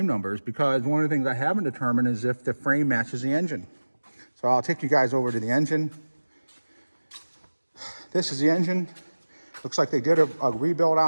numbers, because one of the things I haven't determined is if the frame matches the engine. So I'll take you guys over to the engine. This is the engine. Looks like they did a rebuild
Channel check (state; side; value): inverted; both; correlation -1.00